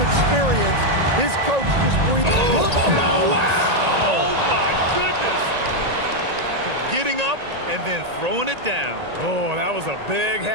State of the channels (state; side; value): late; left; 1.8 ms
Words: experience, his coach just breathed. Wow! Oh, my goodness. Getting up and then throwing it down. Oh, that was a big